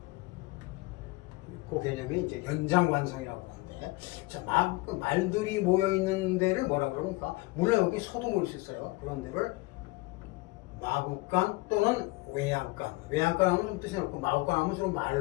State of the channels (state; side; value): quieter; right; 22.4 dB